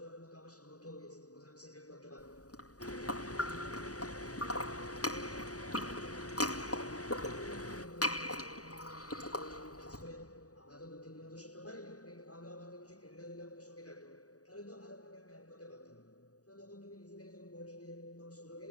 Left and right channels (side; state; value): right; late; 0.67 ms